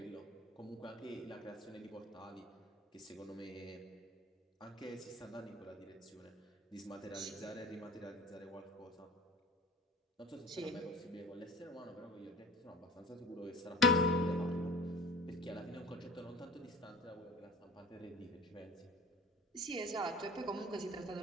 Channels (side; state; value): both; normal; correlation 0.41